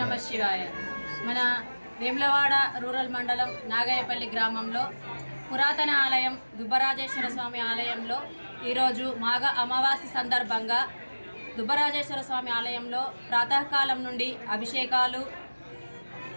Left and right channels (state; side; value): inverted; both; correlation -1.00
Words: నమ శివాయ. మన వేములవాడ రూరల్ మండలం నాగాయపల్లి గ్రామంలో పురాతన ఆలయం దుబ్బరాజేశ్వర స్వామి ఆలయంలో ఈరోజు మాఘ అమావాస్య సందర్భంగా దుబ్బరాజేశ్వర స్వామి ఆలయంలో ప్రాతకాలం నుండి అభిషేకాలు,